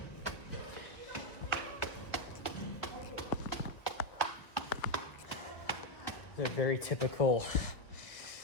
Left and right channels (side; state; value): right; late; 1.3 ms